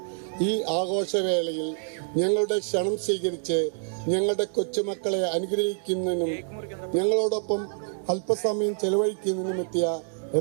ഈ ആഘോഷവേളയിൽ ഞങ്ങളുടെ ക്ഷണം സ്വീകരിച്ച് ഞങ്ങളുടെ കൊച്ചുമക്കളെ അനുഗ്രഹിക്കുന്നതിനും ഞങ്ങളോടൊപ്പം അല്പസമയം ചെലവഴിക്കുന്നതിനും എത്തിയ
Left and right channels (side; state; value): left; silent; digital silence